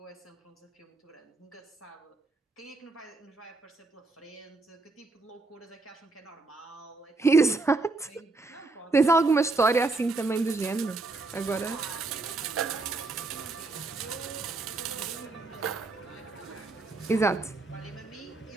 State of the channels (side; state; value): left; quieter; 3.4 dB